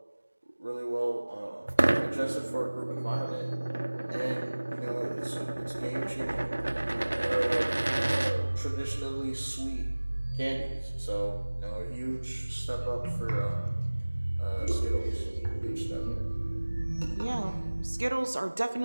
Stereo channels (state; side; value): inverted; both; correlation -1.00